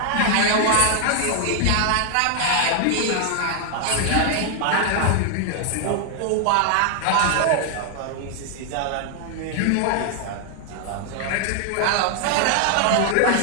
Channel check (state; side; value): different; both; correlation 0.00